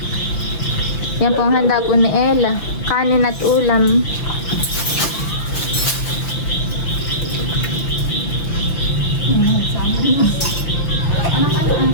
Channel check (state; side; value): late; right; 6.0 ms